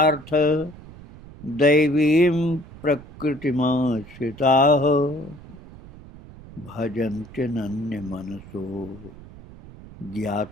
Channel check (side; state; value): right; noise; rumble, 18 dB below the sound